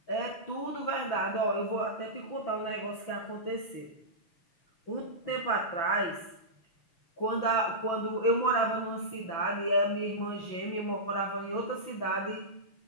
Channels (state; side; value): late; right; 6.1 ms